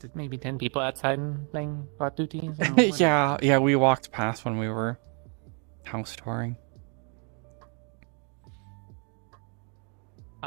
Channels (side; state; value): left; quieter; 39.2 dB